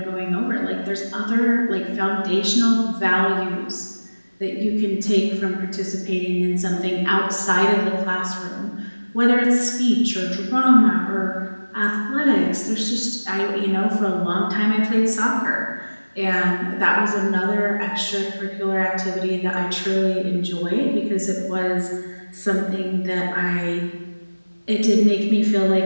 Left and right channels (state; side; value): inverted; both; correlation -1.00